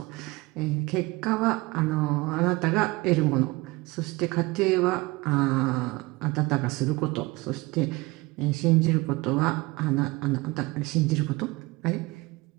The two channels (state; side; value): quieter; left; 22.6 dB